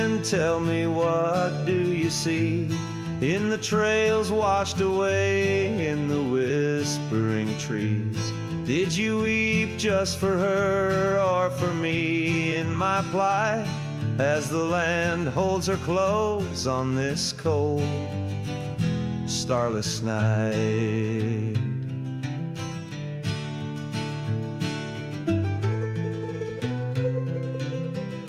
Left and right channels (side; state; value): both; identical; correlation 1.00